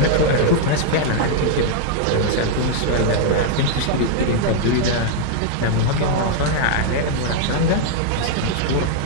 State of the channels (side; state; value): both; different; correlation 0.00